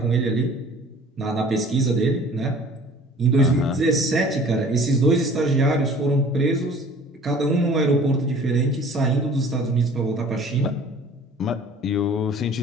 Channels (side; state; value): both; normal; correlation 0.48